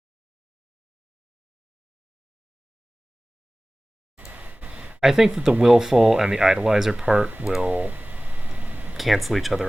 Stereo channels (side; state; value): both; normal; correlation 0.98